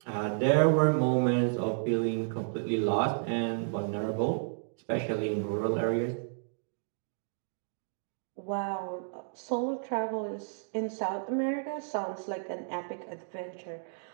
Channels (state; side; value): silent; left; digital silence